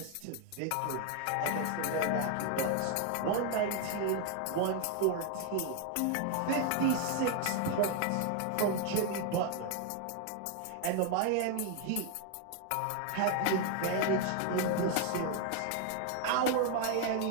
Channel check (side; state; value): both; different; correlation 0.01